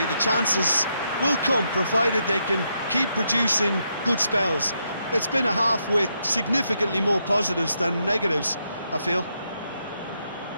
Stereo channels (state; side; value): inverted; both; correlation -0.80